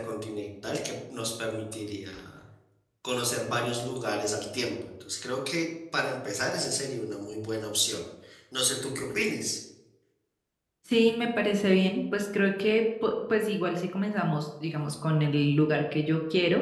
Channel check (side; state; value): both; identical; correlation 1.00